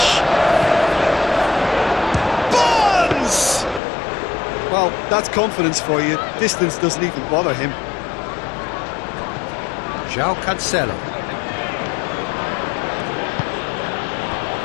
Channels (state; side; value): drops out; right; at 3.8 s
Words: Barnes! Well, that's confidence for you. Distance doesn't even bother him. João Cancelo.